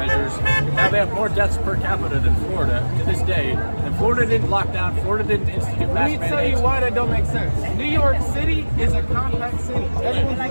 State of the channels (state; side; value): inverted; both; correlation -1.00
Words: Now they have more deaths per capita than Florida to this day. And Florida didn't lock down. Florida didn't institute mask mandates. Let me tell you why that don't make sense. New York City is a compact city. Everyone's